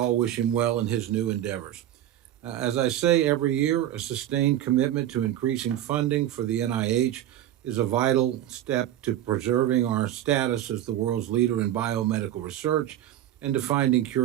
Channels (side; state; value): left; quieter; 12.3 dB